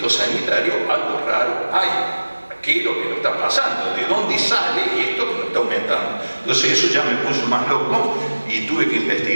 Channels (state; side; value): inverted; both; correlation -1.00